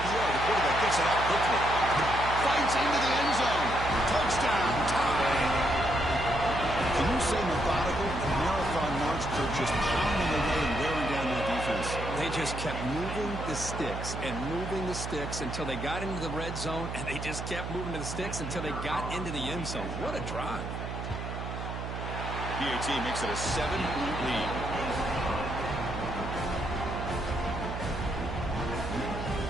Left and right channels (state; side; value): noise; right; hum, 6 dB below the sound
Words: The quarterback gets it out quickly. Fights into the end zone. Touchdown, tie. Can you say methodical? Marathon march for just pounding away and wearing down that defense. They just kept moving the sticks and moving the sticks until they got into the red zone, and they just kept moving to the sticks until they got into the end zone. What a drive. PAT makes it a 7-point lead.